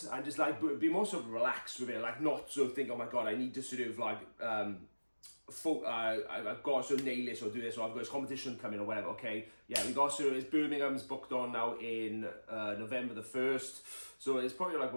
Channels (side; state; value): both; inverted; correlation -1.00